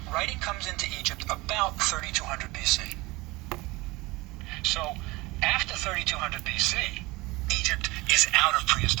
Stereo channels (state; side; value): quieter; left; 22.2 dB